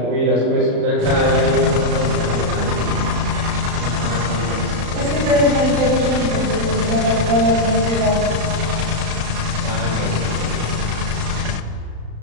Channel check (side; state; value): left; late; 35 ms